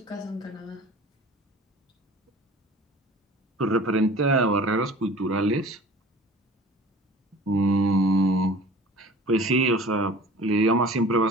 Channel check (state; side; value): normal; both; correlation 0.44